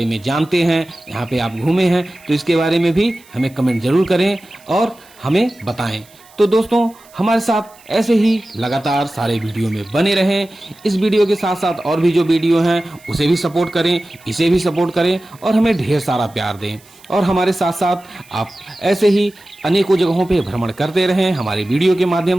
में जानते हैं, यहाँ पे आप घूमे हैं, तो इसके बारे में भी हमें कमेंट जरूर करें और हमें बताएं। तो दोस्तों, हमारे साथ ऐसे ही लगातार सारे वीडियो में बने रहें। इस वीडियो के साथ साथ और भी जो वीडियो हैं उसे भी सपोर्ट करें, इसे भी सपोर्ट करें और हमें ढेर सारा प्यार दें। और हमारे साथ साथ आप ऐसे ही अनेकों जगहों पे भ्रमण करते रहें हमारे वीडियो के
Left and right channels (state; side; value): noise; right; hiss, 27 dB below the sound